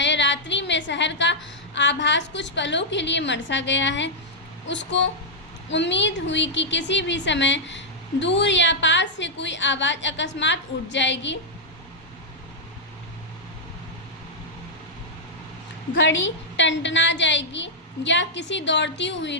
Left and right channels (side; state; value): both; normal; correlation -0.07